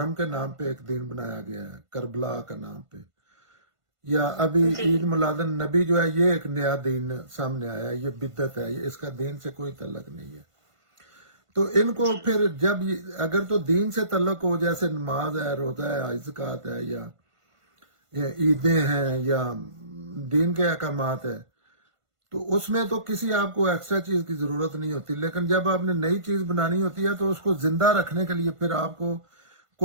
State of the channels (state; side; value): late; left; 1.5 ms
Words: کے نام پہ ایک دین بنایا گیا ہے، کربلا کا نام پہ، یا ابھی جی عید میلاد النبی جو ہے، یہ ایک نیا دین سامنے آیا ہے، یہ بدعت ہے، اس کا دین سے کوئی تعلق نہیں ہے۔ تو ان کو پھر جب اگر تو دین سے تعلق ہو، جیسے نماز ہے، روزہ ہے، زکوٰۃ ہے، یا عیدیں ہیں، یا دین کے احکامات ہے، تو اس میں تو کسی آپ کو ایکسٹرا چیز کی ضرورت نہیں ہوتی۔ لیکن جب آپ نے نئی چیز بنانی ہوتی ہے تو اس کو زندہ رکھنے کے لیے پھر آپ کو